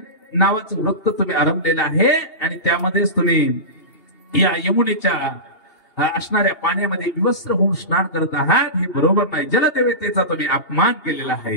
नावाचं व्रत तुम्ही आरंभलेलं आहे आणि त्यामध्येच तुम्ही या यमुनेच्या असणाऱ्या पाण्यामध्ये विवस्त्र होऊन स्नान करत आहात. हे बरोबर नाही. जलदेवतेचा तुम्ही अपमान केलेला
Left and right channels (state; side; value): late; right; 2.8 ms